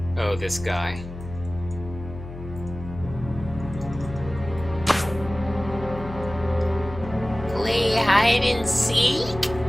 Oh, this guy. Play hide and seek?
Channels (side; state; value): left; noise; hum, 12 dB below the sound